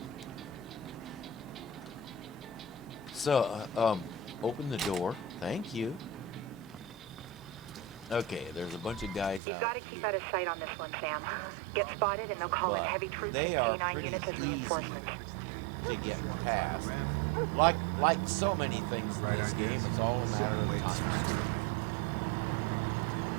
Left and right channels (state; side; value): drops out; left; at 9.4 s